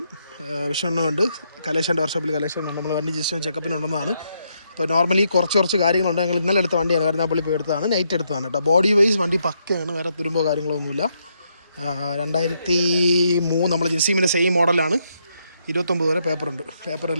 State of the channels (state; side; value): inverted; both; correlation -0.77